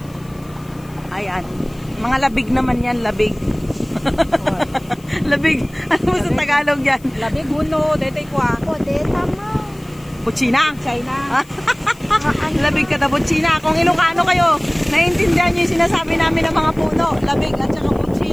Ayan. Mga labig naman yan. Labig. Labig. Ano mo sa Tagalog yan? Labig, huno. Detay ko ah. O, deta mo. Butsina. China. Labig ka na butsina. Kung Ilocano kayo, naiintindihan nyo yung sinasabi namin ng mga puno. Labig at saka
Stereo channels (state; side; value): noise; left; hiss, 27 dB below the sound